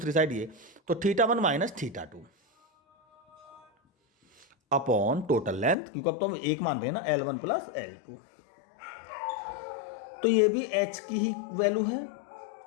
साइड ये, तो θ1 माइनस θ2 अपॉन टोटल लेंथ, क्योंकि अब तो हम एक मान रहे हैं ना, L1 प्लस L2। तो ये भी H की ही वैल्यू है,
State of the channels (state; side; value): drops out; right; at 5.8 s